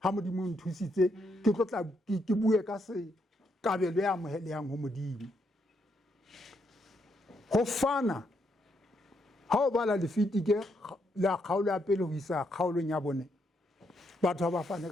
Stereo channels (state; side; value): normal; both; correlation 0.77